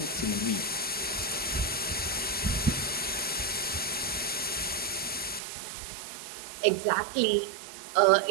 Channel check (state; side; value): drops out; left; at 5.4 s